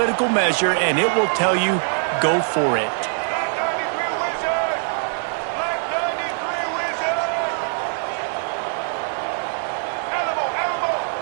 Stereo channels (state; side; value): silent; left; digital silence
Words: measure, and it will tell you, go for it.